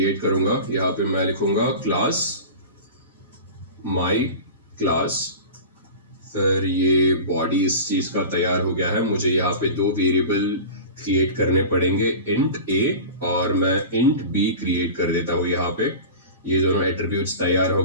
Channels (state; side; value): inverted; both; correlation -0.33